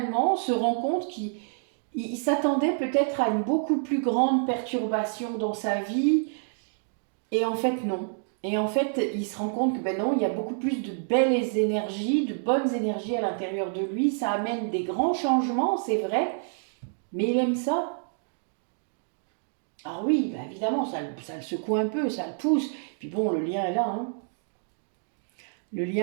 se rend compte qu'il s'attendait peut-être à une beaucoup plus grande perturbation dans sa vie, et en fait non. Et en fait, il se rend compte que ben non, il y a beaucoup plus de belles énergies, de bonnes énergies à l'intérieur de lui. Ça amène des grands changements, c'est vrai, mais il aime ça. Alors oui, ben évidemment, ça le secoue un peu, ça le pousse. Puis bon, le lien est là, hein. Le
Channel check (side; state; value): left; silent; digital silence